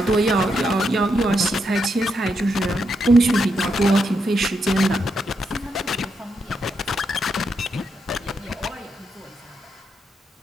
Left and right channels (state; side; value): normal; both; correlation 0.81